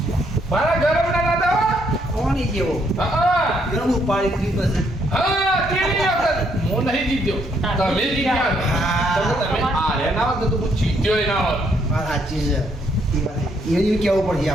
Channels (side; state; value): both; normal; correlation 0.72